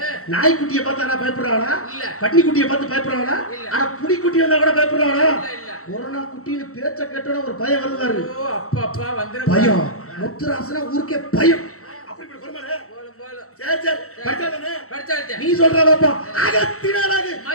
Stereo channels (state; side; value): late; right; 0.64 ms